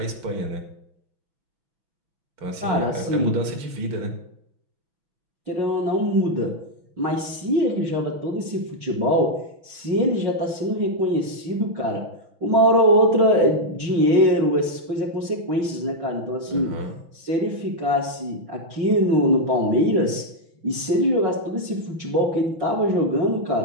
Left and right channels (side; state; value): left; late; 6.0 ms